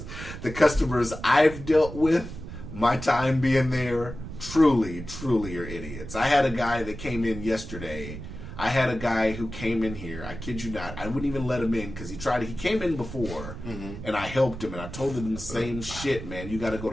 The customers I've dealt with, my time being there, truly are idiots. I had a guy that came in yesterday. I had a guy who came in here. I kid you not. I wouldn't even let him in because he came in before, and I helped him, and I told him the same shit, man. You got to go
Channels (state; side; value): noise; right; rumble, 10 dB below the sound